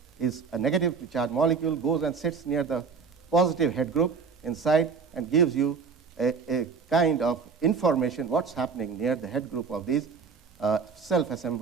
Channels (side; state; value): left; quieter; 5.4 dB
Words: is a negatively charged molecule, goes and sits near the positive head group inside and gives you a kind of information what's happening near the head group of these